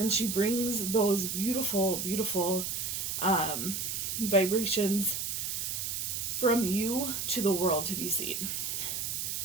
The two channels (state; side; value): noise; right; hiss, 2 dB below the sound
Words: she brings those beautiful, beautiful vibrations from you to the world to be seen.